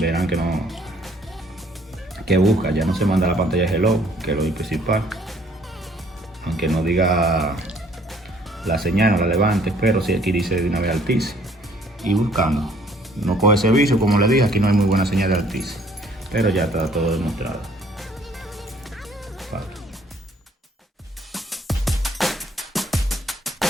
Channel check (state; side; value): normal; both; correlation 0.60